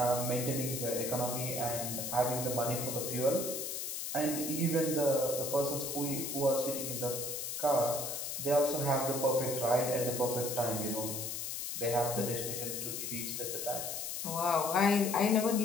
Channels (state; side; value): noise; left; hiss, 4 dB below the sound